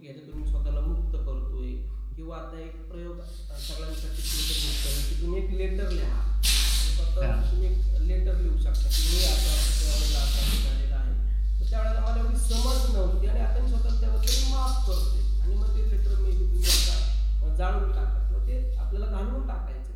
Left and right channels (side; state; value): both; identical; correlation 1.00